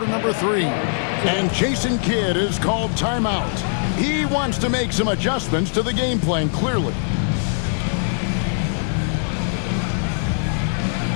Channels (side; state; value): right; silent; digital silence